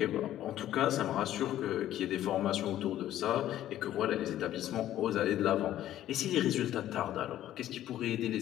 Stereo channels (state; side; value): quieter; right; 12.7 dB